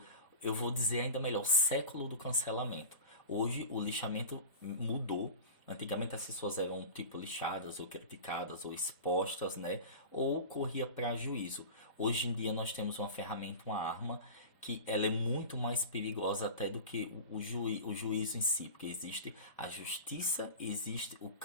eu vou dizer ainda melhor, século do cancelamento. Hoje o lixamento mudou. Antigamente as pessoas eram tipo lixadas ou criticadas ou expostas, né? Ou corria para juízo. Hoje em dia nós temos uma ferramenta, uma arma que ela é muito mais perigosa até do que o juízo em si, porque existe a justiça, existe o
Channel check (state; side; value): inverted; both; correlation -0.32